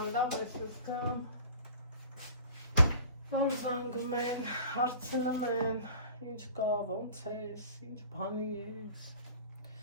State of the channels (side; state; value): both; inverted; correlation -0.44